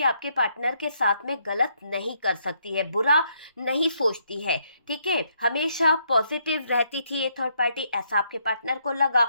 आपके पार्टनर के साथ में गलत नहीं कर सकती है, बुरा नहीं सोचती है। ठीक है, हमेशा पॉजिटिव रहती थी ये थर्ड पार्टी, ऐसा आपके पार्टनर को लगा।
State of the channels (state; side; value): inverted; both; correlation -0.73